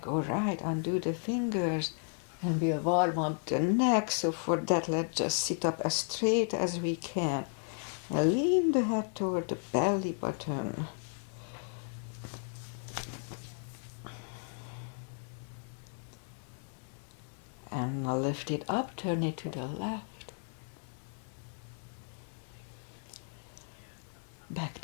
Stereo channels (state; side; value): silent; right; 55 dB below the other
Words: all right, undo the fingers. And we'll warm up the neck, so for that let's just sit up as straight as we can. And lean the head toward the belly button. And now lift it up, turn it to the left. Back